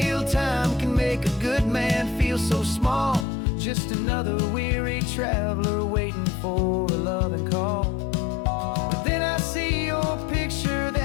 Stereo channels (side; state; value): right; drops out; at 3.2 s